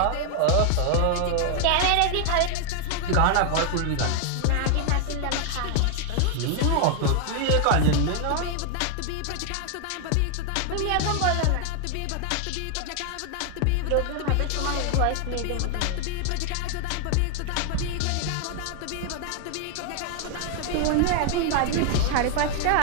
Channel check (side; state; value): both; different; correlation 0.00